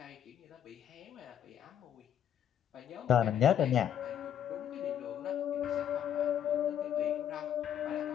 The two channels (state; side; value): quieter; right; 9.7 dB